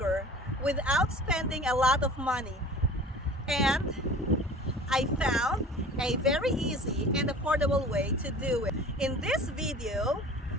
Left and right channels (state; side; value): normal; both; correlation 0.43